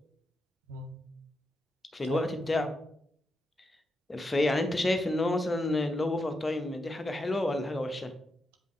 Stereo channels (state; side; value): normal; both; correlation 0.85